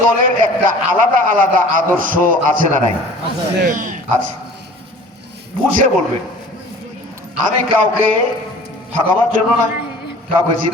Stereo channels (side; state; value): both; normal; correlation 0.46